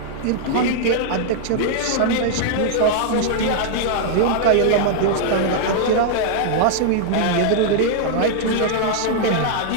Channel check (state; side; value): different; both; correlation 0.00